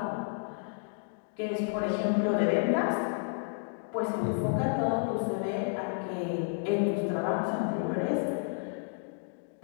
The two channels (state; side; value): silent; right; digital silence